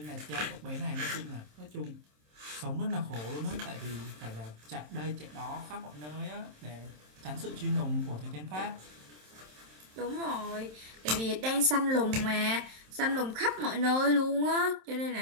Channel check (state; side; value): late; left; 27 ms